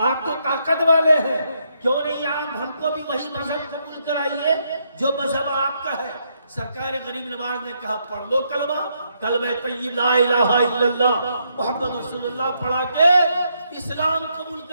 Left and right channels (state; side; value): inverted; both; correlation -0.77